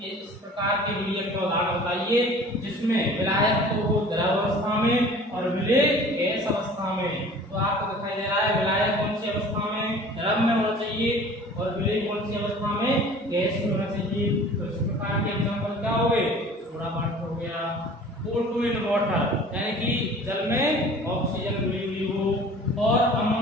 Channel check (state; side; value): normal; both; correlation 0.46